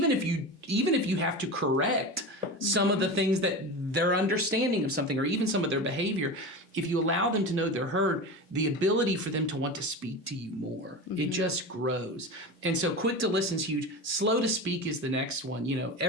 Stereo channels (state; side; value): normal; both; correlation 0.27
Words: if you have to correct some of the things that their understanding of something, or even some of their behavior, if you allow them to know they're heard, the ability for them to want to speak to you more, it just grows. And so quick to listen is huge. Slow to speak is the next one.